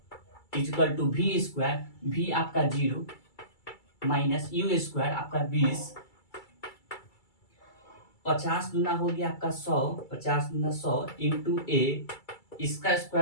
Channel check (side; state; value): right; late; 2.3 ms